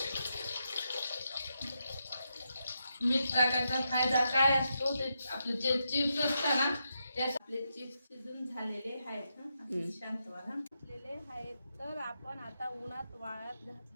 मीठ टाकायचा फायदा काय असतो, ते आपले जे चिप्स असतात ना, त्यास आपले चिप्स शिजून झालेले आहेत. शांत व्हा. घातलेले आहेत. तर आपण आता उन्हात वाळत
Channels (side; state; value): both; inverted; correlation -0.84